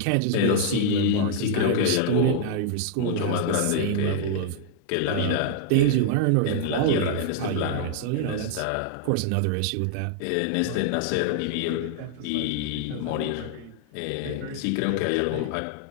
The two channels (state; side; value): different; both; correlation -0.01